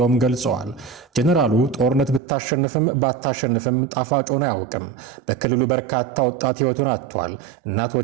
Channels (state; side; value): drops out; left; at 2.2 s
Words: ገልጸዋል። ጀነራሉ ጦርነት ብታሸንፍም ባታሸንፍም ጣፋጭ ሆኖ አያውቅም። በክልሉ በርካታ ወጣት ህይወቱን አጥቷል።